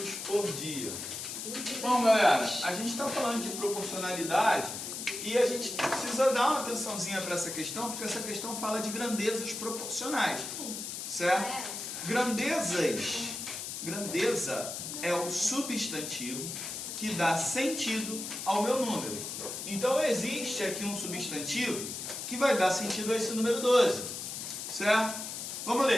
por dia? Bom, galera, a gente está falando de proporcionalidade e a gente precisa dar uma atençãozinha para essa questão, porque essa questão fala de grandezas proporcionais, certo? Grandeza é o substantivo que dá sentido ao meu número. Então existe aqui um substantivo que vai dar sentido a esse número 12, certo? Vamos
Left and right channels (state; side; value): noise; left; hiss, 6 dB below the sound